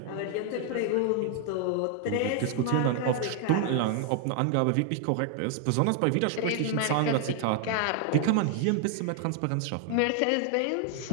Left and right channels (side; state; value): both; different; correlation 0.00